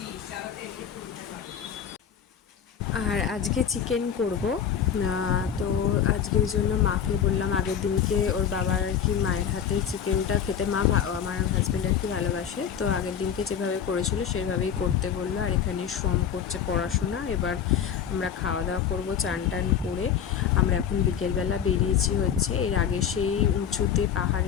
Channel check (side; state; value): right; quieter; 8.3 dB